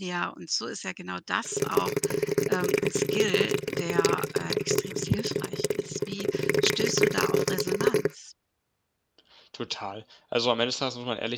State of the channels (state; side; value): identical; both; correlation 1.00